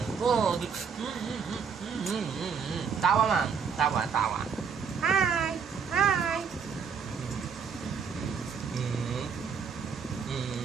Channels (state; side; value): quieter; left; 6.3 dB